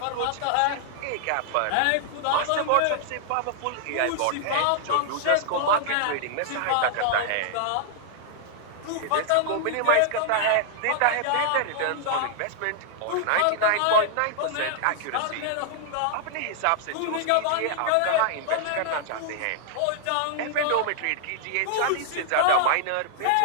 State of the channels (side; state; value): both; different; correlation 0.00